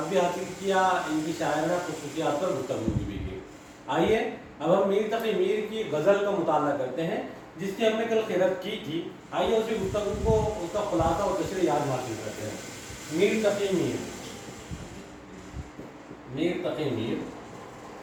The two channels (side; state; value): both; identical; correlation 1.00